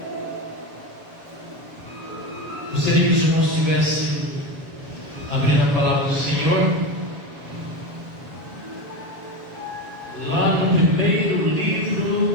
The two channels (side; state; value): left; late; 7.1 ms